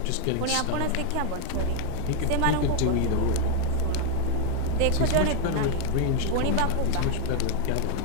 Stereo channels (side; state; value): both; different; correlation 0.00